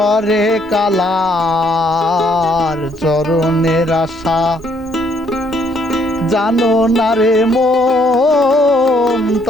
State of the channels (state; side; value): normal; both; correlation 0.68